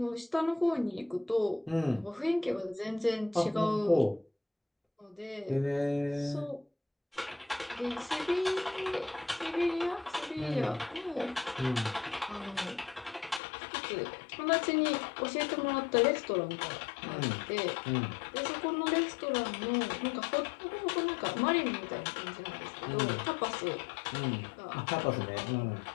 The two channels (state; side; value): drops out; right; at 13.4 s